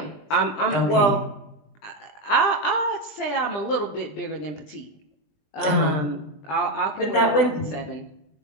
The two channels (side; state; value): right; late; 20 ms